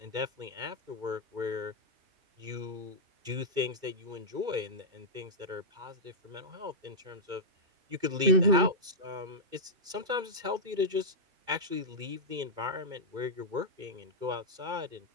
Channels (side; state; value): left; late; 2.2 ms